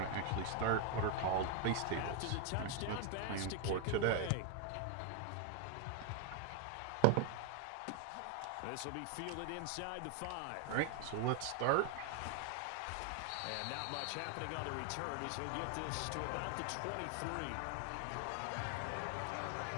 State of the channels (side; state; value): both; different; correlation 0.00